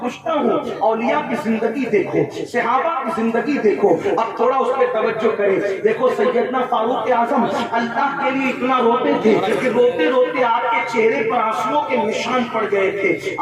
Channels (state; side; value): identical; both; correlation 1.00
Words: ہوں اولیاء کی زندگی دیکھو, صحابہ کی زندگی دیکھو, اب تھوڑا اس پہ توجہ کریں. دیکھو سیدنا فاروق اعظم اللہ کے لیے اتنا روتے تھے کہ روتے روتے آپ کے چہرے پر آنسوؤں کے نشان پڑ گئے تھے.